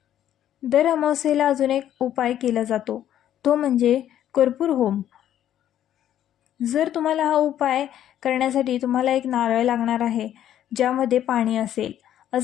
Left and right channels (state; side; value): quieter; right; 11.2 dB